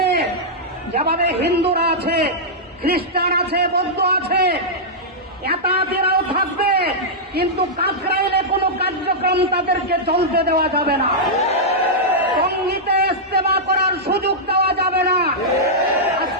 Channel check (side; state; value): both; normal; correlation -0.09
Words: যেভাবে হিন্দুরা আছে, খ্রিস্টান আছে, বৌদ্ধ আছে, এতাতেরাও থাকবে, কিন্তু কাকরাইলে কোনো কার্যক্রম তাদেরকে চলতে দেওয়া যাবে না। সঙ্গীতে ইস্তেমা করার সুযোগ দেওয়া যাবে না।